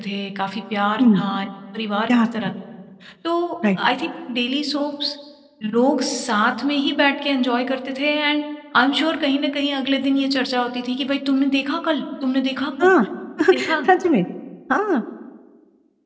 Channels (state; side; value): identical; both; correlation 1.00